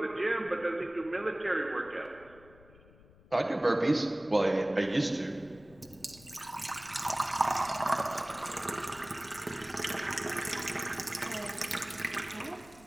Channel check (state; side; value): noise; left; rumble, 24 dB below the sound